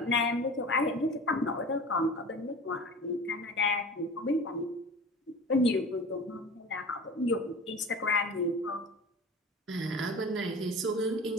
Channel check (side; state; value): both; normal; correlation 0.37